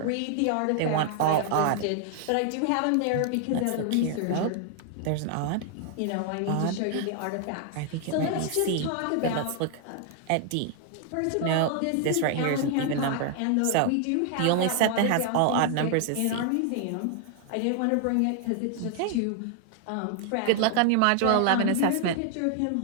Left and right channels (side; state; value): both; different; correlation 0.00